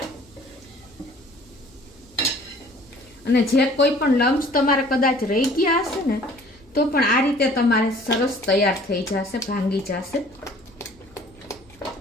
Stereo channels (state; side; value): noise; left; hum, 29 dB below the sound